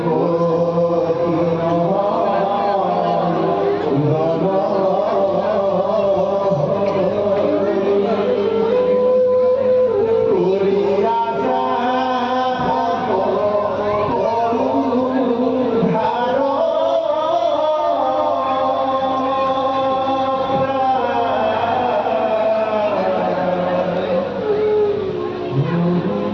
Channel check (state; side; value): identical; both; correlation 1.00